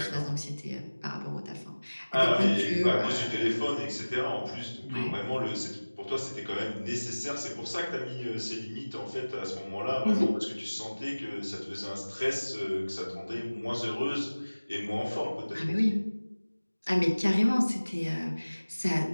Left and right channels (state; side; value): inverted; both; correlation -1.00